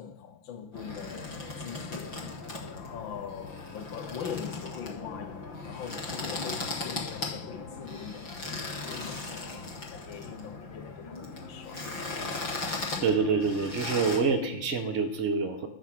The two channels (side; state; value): right; late; 5.9 ms